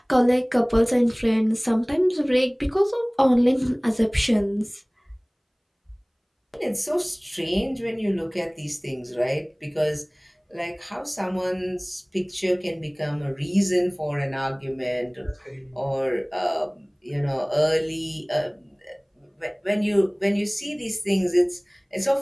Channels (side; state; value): both; identical; correlation 1.00